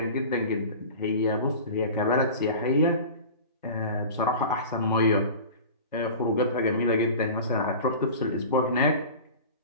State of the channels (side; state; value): both; inverted; correlation -0.36